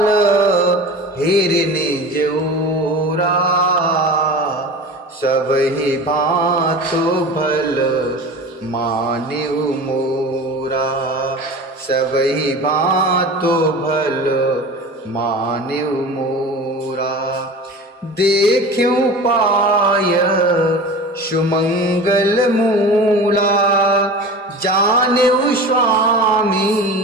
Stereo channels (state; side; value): normal; both; correlation 0.34